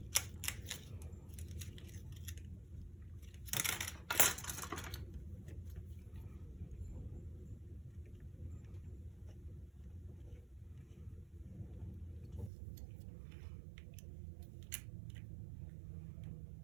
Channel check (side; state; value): left; drops out; at 12.5 s